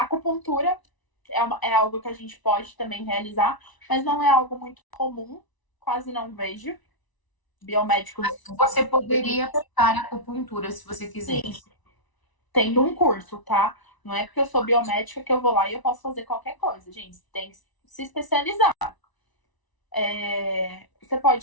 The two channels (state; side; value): late; right; 1.0 ms